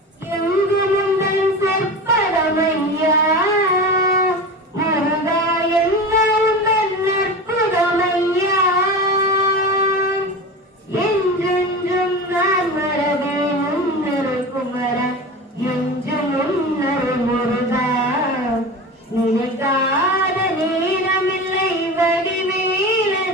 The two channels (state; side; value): normal; both; correlation 0.29